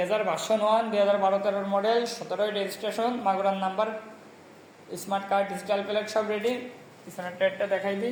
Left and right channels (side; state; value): both; identical; correlation 1.00